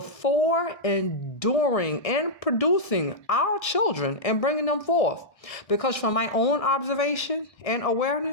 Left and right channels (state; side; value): late; right; 1.7 ms